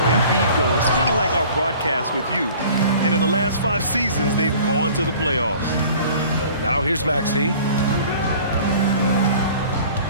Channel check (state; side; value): inverted; both; correlation -0.48